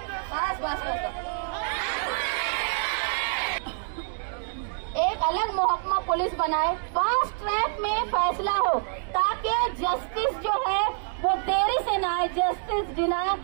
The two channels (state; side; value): silent; left; 60 dB below the other